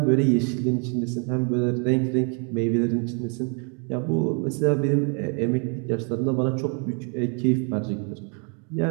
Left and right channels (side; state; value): left; quieter; 38.8 dB